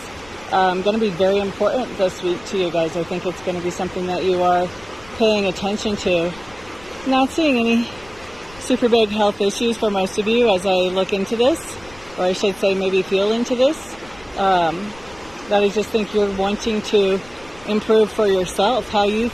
going to be very important this week to you guys. I think it's going to be something that you are paying attention to. Not seeing any super big health issues for most of you as I look into this, or I should say maybe feel into this. That I just think you're wanting to improve for yourself, how you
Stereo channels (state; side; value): noise; left; rumble, 24 dB below the sound